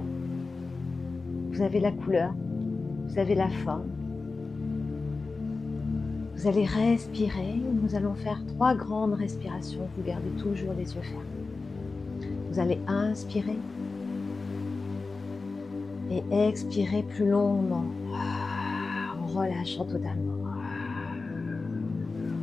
Vous avez la couleur, vous avez la forme. Vous allez respirer. Nous allons faire 3 grandes respirations. Vous gardez toujours les yeux fermés. Vous allez inspirer et expirer plus longuement, en relâchant totalement.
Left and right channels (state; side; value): quieter; right; 3.9 dB